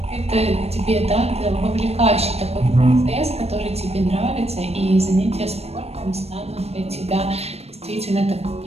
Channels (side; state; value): left; late; 0.30 ms